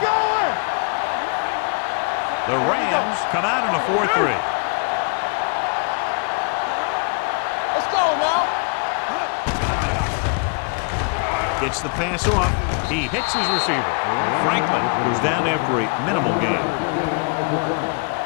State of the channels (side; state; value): right; quieter; 38.1 dB